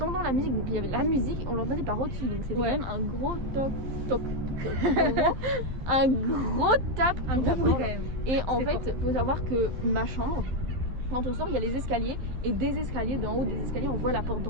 la musique, donc il y avait la musique, on l'entendait par au-dessus, donc c'était Ouais. quand même un gros toc. En gros, un gros tape. Un sur gros la bruit porte. quand même. Et en C'était fait, faut savoir que ma chambre, quand on sort, il y a les escaliers, et des escaliers, d'en haut des escaliers, on voit la porte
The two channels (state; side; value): late; left; 12 ms